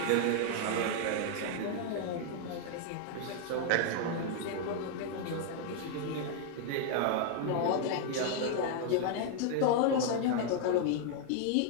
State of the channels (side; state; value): both; different; correlation 0.00